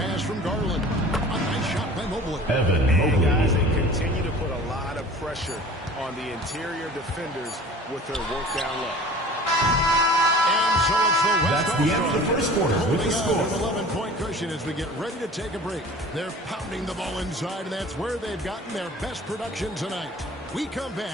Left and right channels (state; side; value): normal; both; correlation 0.44